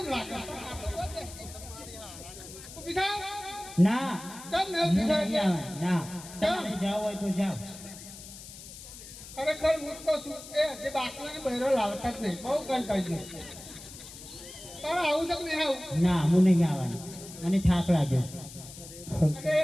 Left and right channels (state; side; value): noise; left; hiss, 15 dB below the sound